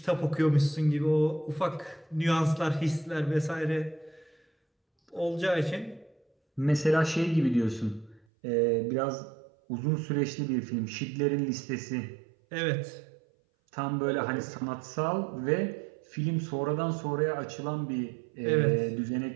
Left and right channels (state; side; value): drops out; left; at 8.2 s